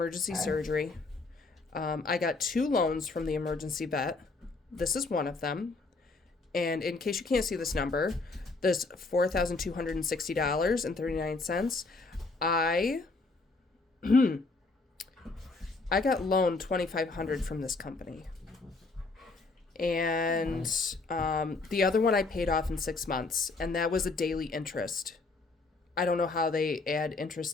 surgery. I got 2 loans from the emergency vet. This is one of them. And in case you can't see this number, this $4,260.39. I got loaned $2,500 from this company. And the other one I paid off in 6 months, and that was a daily interest. I don't know how they add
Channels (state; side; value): quieter; right; 3.7 dB